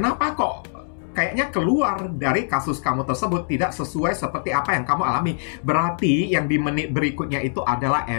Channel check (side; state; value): right; silent; 64 dB below the other